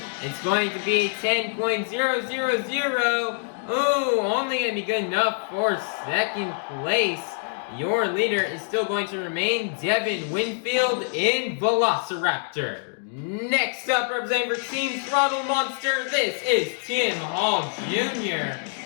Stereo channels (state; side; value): silent; right; 62 dB below the other